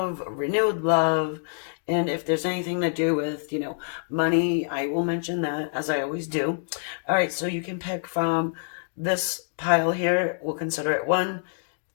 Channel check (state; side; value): silent; right; digital silence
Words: renewed love, and if there's anything to do with, money, I will mention that as I always do. All right, so you can pick from this pile here. We'll consider it 1,